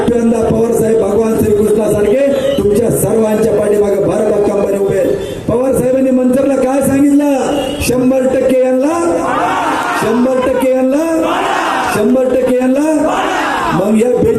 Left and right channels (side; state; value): both; identical; correlation 1.00